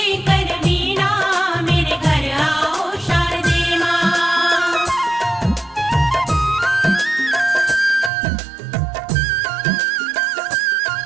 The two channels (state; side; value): drops out; left; at 8.1 s